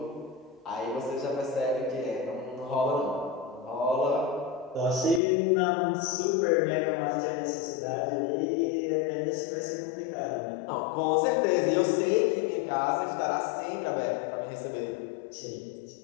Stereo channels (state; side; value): drops out; right; at 5.2 s